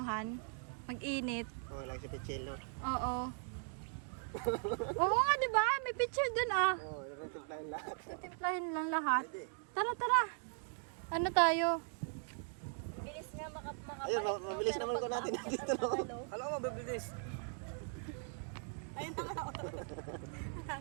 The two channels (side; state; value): left; silent; 52 dB below the other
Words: Mag-init. Oh, lang si Pichel, no? Oo. Oo nga, di ba? May picture dun, ah. Oh, narutuplahin lahat. Titimplahin lang lahat. Tara, tara. Ano tayo? Ayun, mabilis naman ko natin dito, no? Alam ko, mabilis.